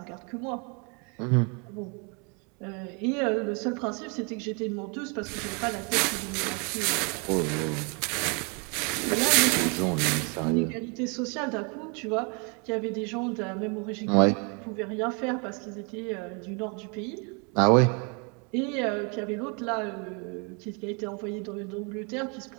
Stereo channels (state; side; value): quieter; left; 34.1 dB